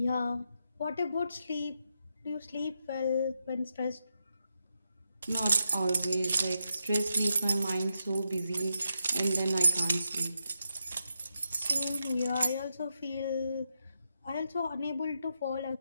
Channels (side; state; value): both; inverted; correlation -0.85